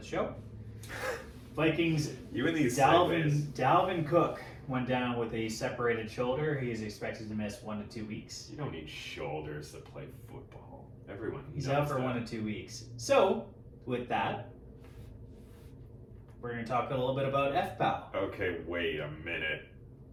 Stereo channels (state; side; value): identical; both; correlation 1.00